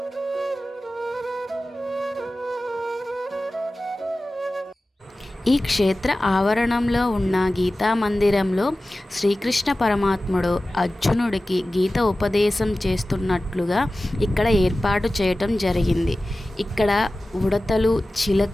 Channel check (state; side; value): normal; both; correlation 0.96